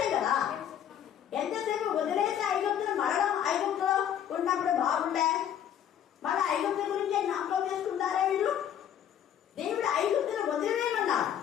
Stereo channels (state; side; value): quieter; right; 9.8 dB